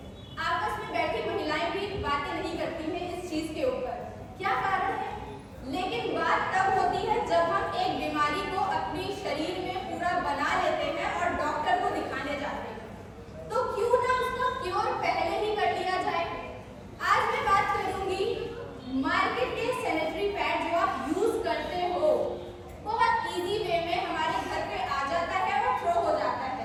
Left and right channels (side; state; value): both; identical; correlation 1.00